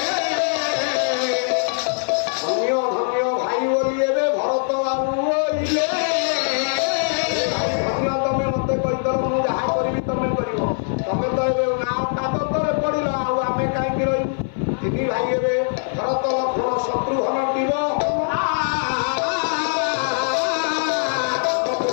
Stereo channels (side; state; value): right; silent; 58 dB below the other